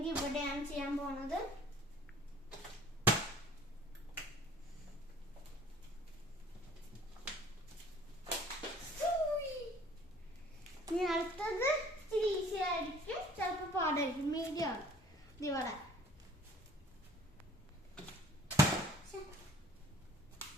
ഇവിടെയാണ് ചെയ്യാൻ പോണത്. ഇനി അടുത്തത് ഇച്ചിരി ഈസി ആയിരിക്കും, ചിലപ്പോൾ പാടായിരിക്കും. മീഡിയം ആണ് ഇവിടെ.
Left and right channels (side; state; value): both; normal; correlation 0.52